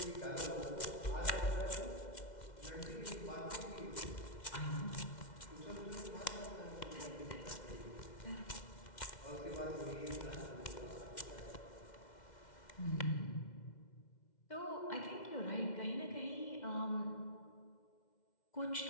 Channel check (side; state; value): right; late; 2.1 ms